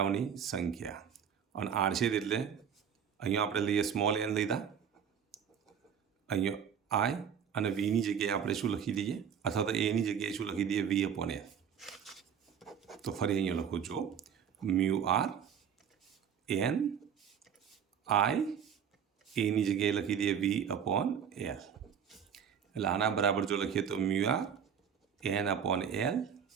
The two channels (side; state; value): left; quieter; 7.8 dB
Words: સંખ્યા, અને આડછેદ એટલે અહીંયા આપણે લઈએ સ્મોલ એન લીધા, અહીંયા આઈ અને વીની જગ્યાએ આપણે શું લખી દઈએ, અથવા તો એની જગ્યાએ શું લખી દઈએ વી અપોન એલ. તો ફરી અહીંયા લખું છું મ્યુ આર એન આઈ એની જગ્યાએ લખી દઈએ વી અપોન એલ. એટલે આના બરાબર જો લખીએ તો mu R N upon L